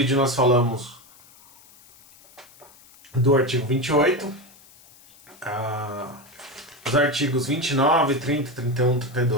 nós falamos do artigo 28, os artigos 29, 30, 31,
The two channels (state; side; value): noise; left; hiss, 25 dB below the sound